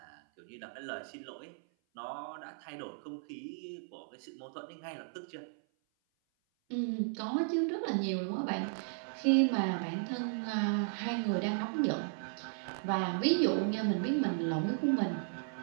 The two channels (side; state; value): left; silent; 54 dB below the other